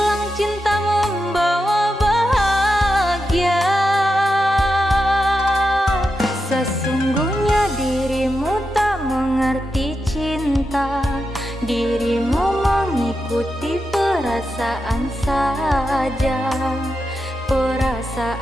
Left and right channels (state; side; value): normal; both; correlation 0.88